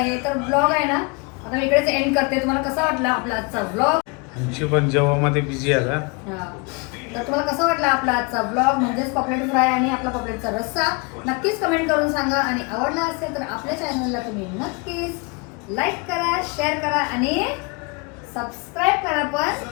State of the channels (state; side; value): quieter; right; 29.6 dB